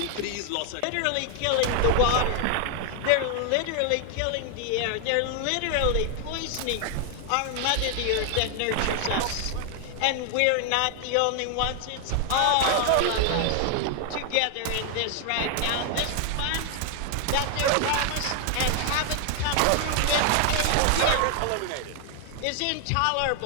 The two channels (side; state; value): both; different; correlation 0.00